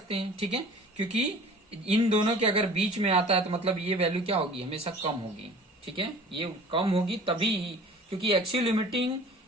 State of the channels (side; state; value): both; normal; correlation 0.45